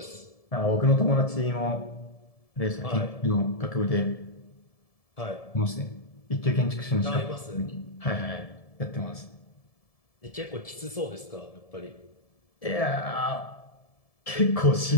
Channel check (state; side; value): late; right; 1.7 ms